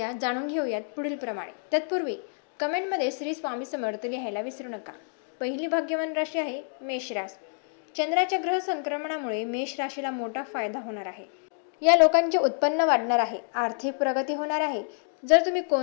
जाणून घेऊयात पुढील प्रमाणे। तत्पूर्वी कमेंटमध्ये श्री स्वामी समर्थ लिहायला विसरू नका। पहिली भाग्यवान राशी आहे मेष राशी। चंद्राच्या ग्रह संक्रमणामुळे मेष राशीला मोठा फायदा होणार आहे। या लोकांचे उत्पन्न वाढणार आहे, आर्थिक प्रगती होणार आहे। जर तुम्ही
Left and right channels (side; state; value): right; silent; 59 dB below the other